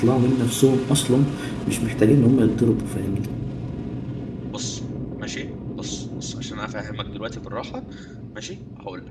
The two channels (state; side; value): identical; both; correlation 1.00